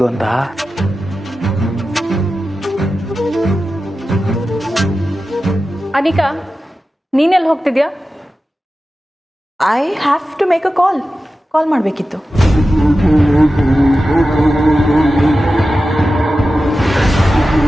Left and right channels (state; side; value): normal; both; correlation 0.93